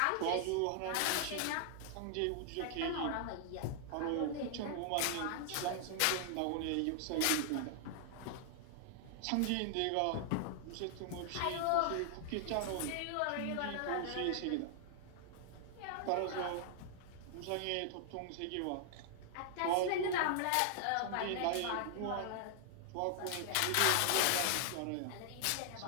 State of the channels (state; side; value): different; both; correlation 0.00